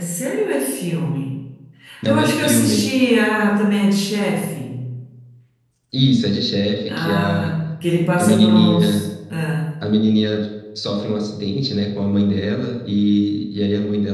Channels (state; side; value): identical; both; correlation 1.00